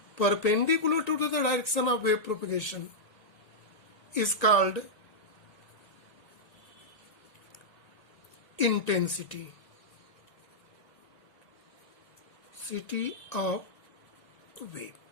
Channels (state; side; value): late; right; 1.8 ms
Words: perpendicular to the direction of wave propagation is called intensity of wave.